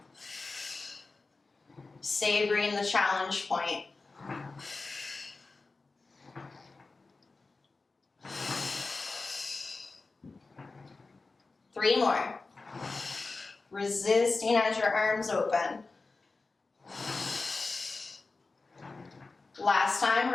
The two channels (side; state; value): right; quieter; 3.7 dB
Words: Savoring the challenge point. Three more. Resisting as your arms open. Last time,